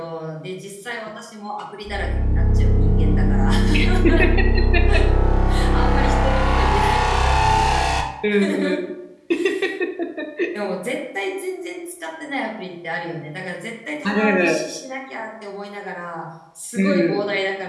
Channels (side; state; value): both; identical; correlation 1.00